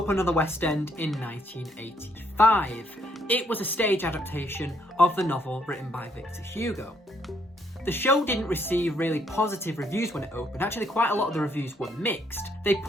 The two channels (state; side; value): normal; both; correlation 0.71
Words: on the West End in 1985. It was a stage adaptation of the novel written by Victor Hugo. The show didn't receive really positive reviews when it opened. Actually, quite a lot of the reviews were mixed. They